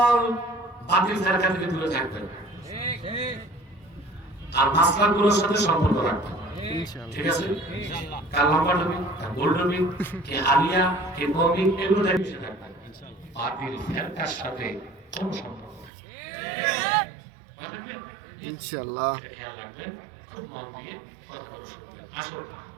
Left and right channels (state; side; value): drops out; left; at 15.9 s